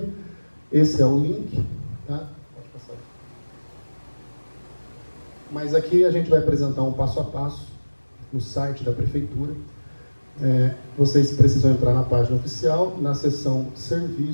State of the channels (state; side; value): inverted; both; correlation -1.00